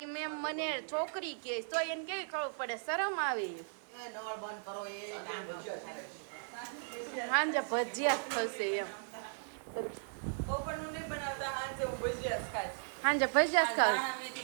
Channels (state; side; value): silent; left; digital silence